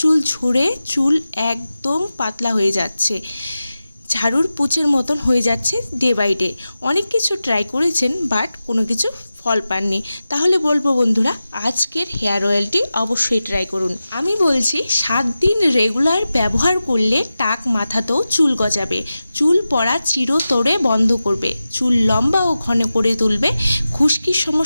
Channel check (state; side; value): inverted; both; correlation -0.94